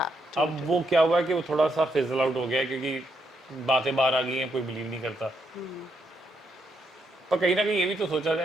अब वो क्या हुआ कि वो थोड़ा सा फिजल आउट हो गया क्योंकि बातें बाहर आ गई हैं कोई बिलीव नहीं करता पर कहीं ना कहीं ये भी तो सोचा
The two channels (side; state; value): both; normal; correlation 0.77